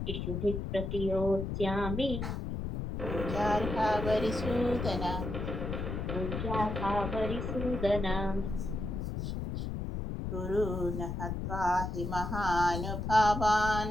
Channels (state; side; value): noise; left; rumble, 4 dB below the sound